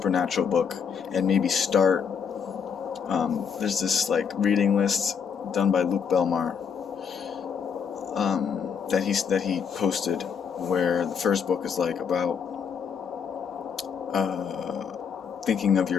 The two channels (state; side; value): quieter; right; 6.8 dB